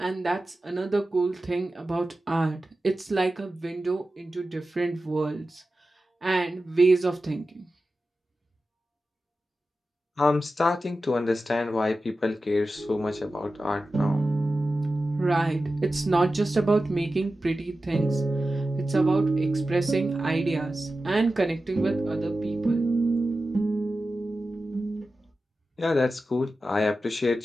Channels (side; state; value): both; normal; correlation 0.93